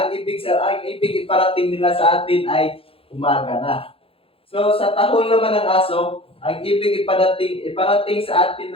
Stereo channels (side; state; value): right; late; 0.27 ms